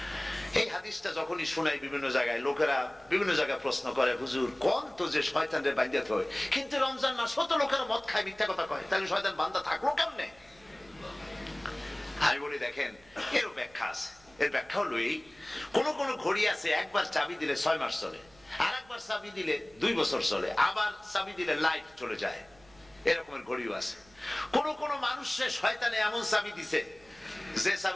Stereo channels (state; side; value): noise; right; hum, 28 dB below the sound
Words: এই হাদিসটা যখনই শোনাই বিভিন্ন জায়গায়, লোকেরা বিভিন্ন জায়গায় প্রশ্ন করে, হুজুর কোন তো যে শয়তানদের বাঁধতে হয়, কিন্তু রমজান মাস হতো লোকেরা মদ খায়, মিথ্যা কথা কয়, তাহলে শয়তান বান্ধা থাকলো কেমনে? আমি বলি, দেখেন, এর ব্যাখ্যা আছে। এর ব্যাখ্যা হলো এই, কোন কোন ঘড়ি আছে একবার চাবি দিলে 6 মাস চলে, আর একবার চাবি দিলে 2 বছর চলে, আবার চাবি দিলে লাইফ চলে যায়। এরকমের ঘড়িও আছে। কোন কোন মানুষের শয়তানে এমন চাবি দিছে যে